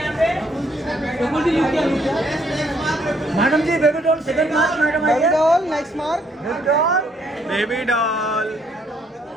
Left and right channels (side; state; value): both; normal; correlation 0.69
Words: पे रकुल जी लुक किया, madam ji baby doll second mark, madam baby doll next mark, baby doll,